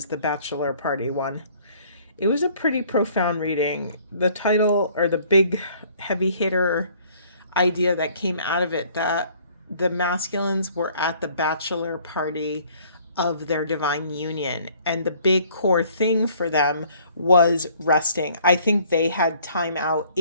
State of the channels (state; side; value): inverted; both; correlation -0.58